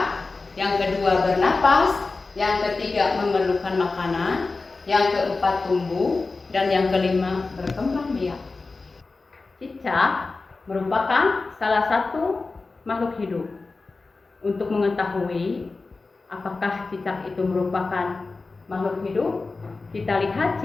yang kedua bernapas, yang ketiga memerlukan makanan, yang keempat tumbuh, dan yang kelima berkembang biak. Cicak merupakan salah satu makhluk hidup. Untuk mengetahui apakah cicak itu merupakan makhluk hidup, kita lihat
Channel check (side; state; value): right; quieter; 3.8 dB